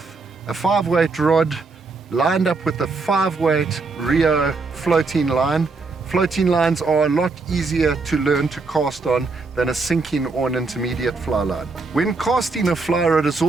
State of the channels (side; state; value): left; quieter; 4.0 dB